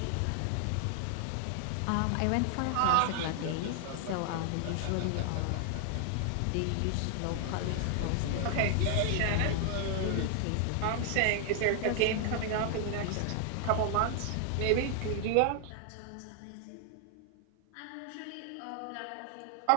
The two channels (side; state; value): both; different; correlation 0.00